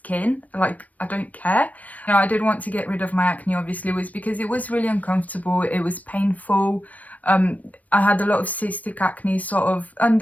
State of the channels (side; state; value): right; late; 0.072 ms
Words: Like, I don't care. You know, I did want to get rid of my acne, obviously, was because it was really uncomfortable. It was painful. I had a lot of cystic acne sort of